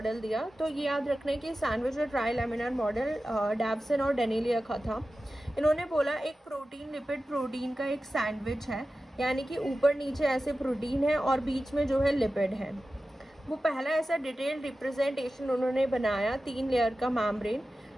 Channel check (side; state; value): both; normal; correlation 0.94